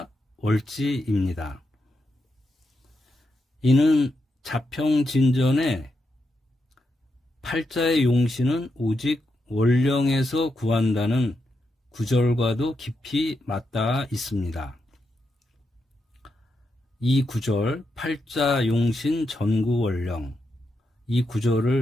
월지입니다. 이는 자평진전에 팔자의 용신은 오직 월령에서 구한다는 구절과도 깊이 맞닿아 있습니다. 이 구절, 팔자 용신 전구월령, 이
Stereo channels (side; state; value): both; normal; correlation 0.84